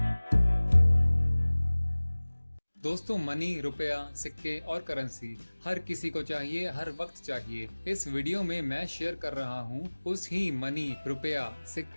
दोस्तों, मनी, रुपया, सिक्के और करेंसी हर किसी को चाहिए, हर वक्त चाहिए। इस वीडियो में मैं शेयर कर रहा हूँ उस ही मनी, रुपया,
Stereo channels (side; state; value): both; inverted; correlation -1.00